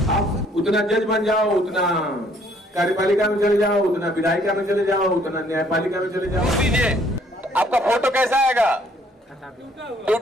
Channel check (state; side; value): normal; both; correlation 0.63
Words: आप उतना जज बन जाओ, उतना कार्यपालिका में चले जाओ, उतना विधायिका में चले जाओ, उतना न्यायपालिका में चले जाओ। दीजिए आपका फोटो कैसा आएगा?